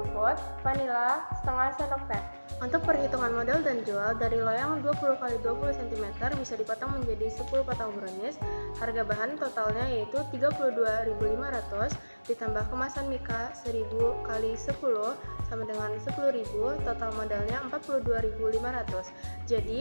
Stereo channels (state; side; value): inverted; both; correlation -1.00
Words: vanila setengah sendok teh. Untuk perhitungan modal dan jual, dari loyang 20x20 cm bisa dipotong menjadi 10 potong brownies. Harga bahan totalnya yaitu 32.500 ditambah kemasan mika 1000 x 10 sama dengan 10.000, total modalnya 42.500.